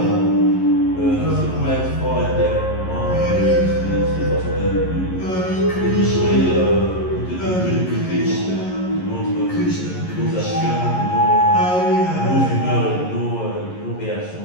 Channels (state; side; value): late; right; 11 ms